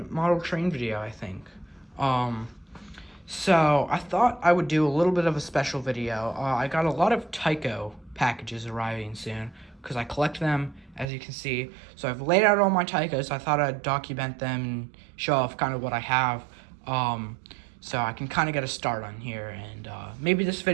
model train video, I think. So I thought I would do a little bit of a special video. I got a lot of Tyco packages arriving soon, because I collect them, as you can see. So I've laid out all my Tycos. I thought I'd document them and show off kind of what I have. So I can kind of get a start on here, and maybe this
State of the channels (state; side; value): drops out; left; at 11.1 s